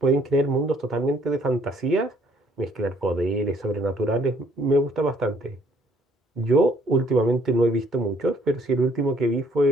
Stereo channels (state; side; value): normal; both; correlation 0.63